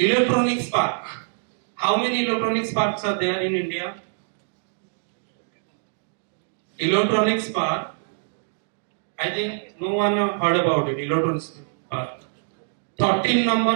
park. How many electronics parks are there in India? Electronics park. I think no one heard about it. Electronics park. 13 number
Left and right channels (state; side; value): silent; left; digital silence